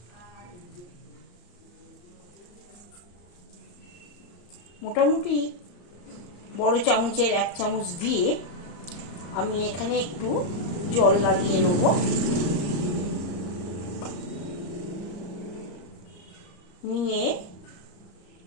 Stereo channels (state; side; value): late; right; 34 ms